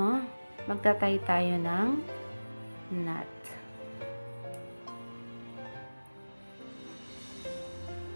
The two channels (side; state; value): both; inverted; correlation -1.00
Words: Magtatay tayo ng knot.